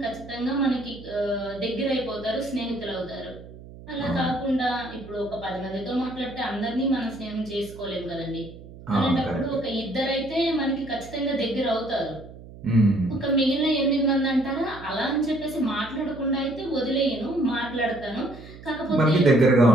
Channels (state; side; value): noise; right; hum, 17 dB below the sound